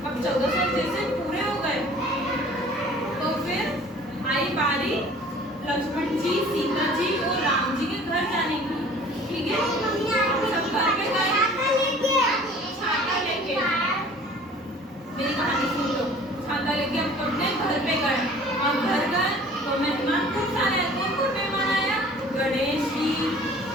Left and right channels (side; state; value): both; normal; correlation 0.49